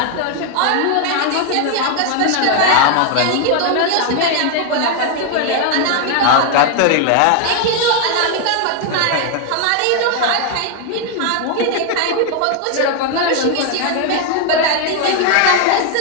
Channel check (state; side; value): different; both; correlation 0.01